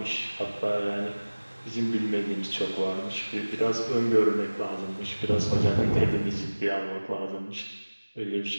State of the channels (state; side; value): inverted; both; correlation -1.00